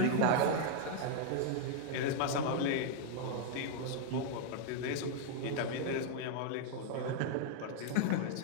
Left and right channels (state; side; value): different; both; correlation -0.01